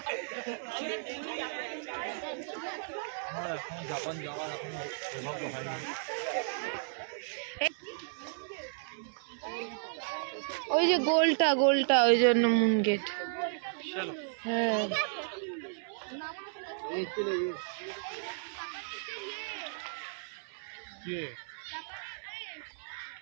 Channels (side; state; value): left; silent; 55 dB below the other